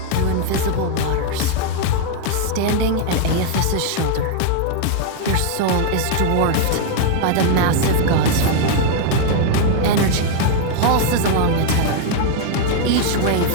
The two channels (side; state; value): both; different; correlation 0.00